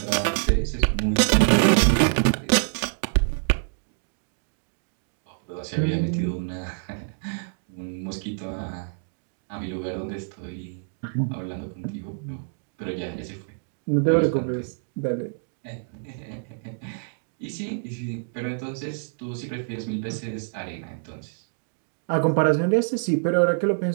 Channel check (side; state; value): left; silent; digital silence